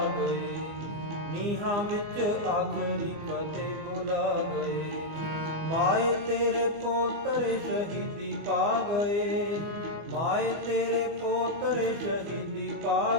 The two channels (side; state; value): left; late; 25 ms